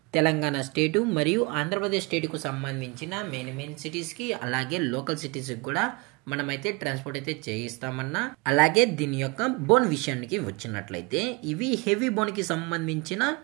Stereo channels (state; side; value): quieter; left; 28.1 dB